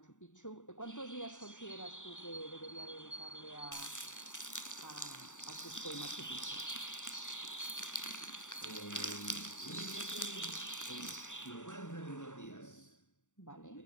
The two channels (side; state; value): right; late; 0.86 ms